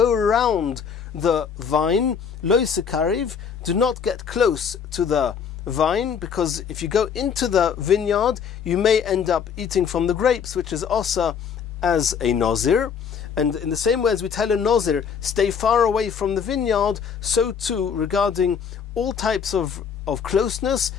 around the vine, lo sekariv, do not get close to the vine, because if you go into the vineyard, you may end up eating from the grapes, which is also as a nazir. And in the same way as we tell a nazir, stay far away from the vineyard, so too regarding all types of closeness,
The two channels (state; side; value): quieter; right; 7.0 dB